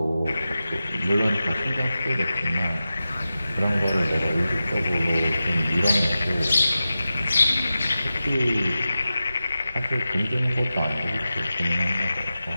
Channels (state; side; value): inverted; both; correlation -0.93